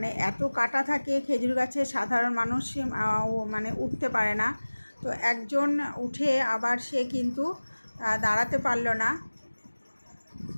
এত কাটা থাকে খেজুর গাছে, সাধারণ মানুষ মানে উঠতে পারে না। তো একজন উঠে আবার সে কিন্তু দাঁড়াতে পারলো না,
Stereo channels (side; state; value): both; inverted; correlation -1.00